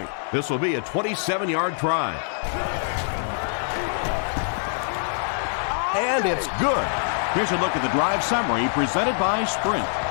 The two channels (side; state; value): right; silent; digital silence